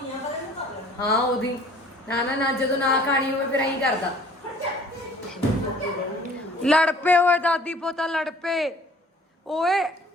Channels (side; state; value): both; normal; correlation 0.53